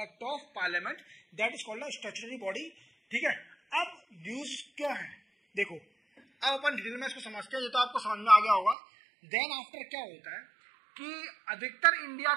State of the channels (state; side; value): drops out; left; at 8.8 s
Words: of parliament, that is called a statutory body, ठीक है। अब न्यूज क्यों है देखो, अब अपन डिटेल में इसको समझते हैं। ये तो आपको समझ में आ गया होगा। देन आफ्टर क्या होता है कि अधिकतर इंडिया